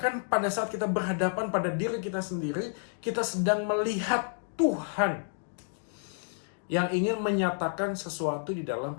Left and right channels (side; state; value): right; silent; digital silence